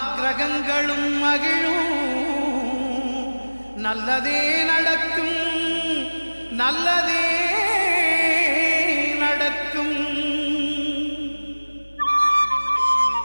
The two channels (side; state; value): both; inverted; correlation -1.00